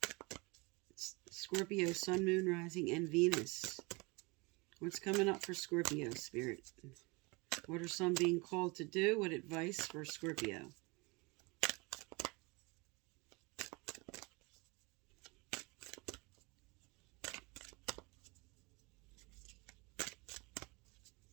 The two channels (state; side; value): quieter; left; 27.0 dB